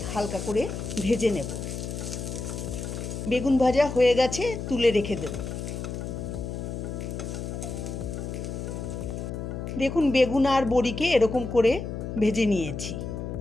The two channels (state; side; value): noise; left; hum, 6 dB below the sound